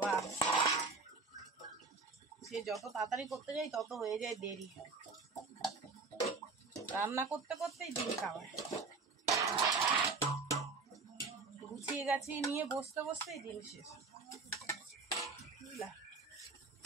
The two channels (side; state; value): left; quieter; 4.3 dB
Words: সে যত তাড়াতাড়ি করতে যাই তত হয়ে যায় দেরি। রান্না করতে করতেই দিন খাওয়ায়। গুছিয়ে গাছিয়ে নিয়ে বসতে বসতেই দিন শেষ, বুঝলা।